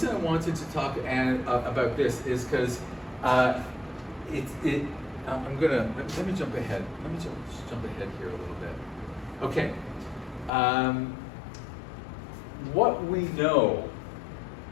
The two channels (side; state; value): right; drops out; at 10.5 s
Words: I wanted to talk about this is because let me jump ahead. Let me jump ahead here a little bit. Okay. What we know